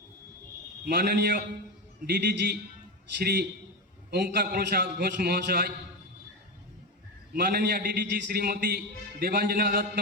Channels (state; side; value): normal; both; correlation 0.16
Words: माननीय DDG Shri ओंकार प्रसाद घोष महाशय, माननीय डीडीजी श्रीमती देवांजना दत्त